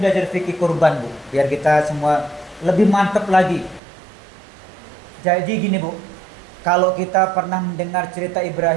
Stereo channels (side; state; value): left; drops out; at 3.8 s